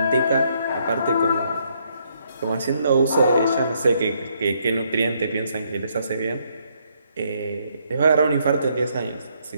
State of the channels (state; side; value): inverted; both; correlation -0.72